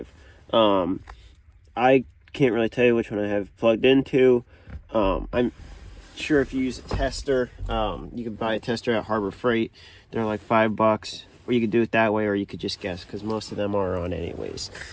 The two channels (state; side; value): identical; both; correlation 1.00